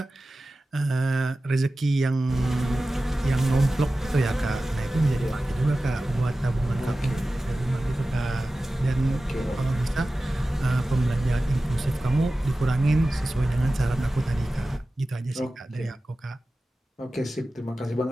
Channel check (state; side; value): normal; both; correlation 0.95